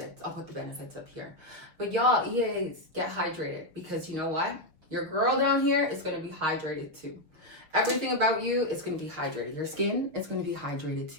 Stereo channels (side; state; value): left; late; 6.5 ms